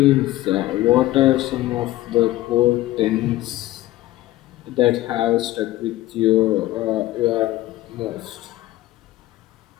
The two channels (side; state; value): right; quieter; 16.2 dB